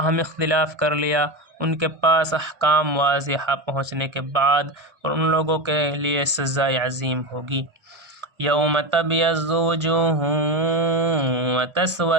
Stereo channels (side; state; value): left; late; 1.4 ms